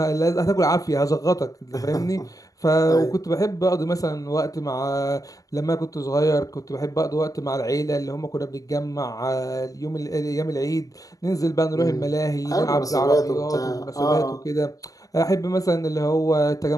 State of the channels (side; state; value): right; late; 0.17 ms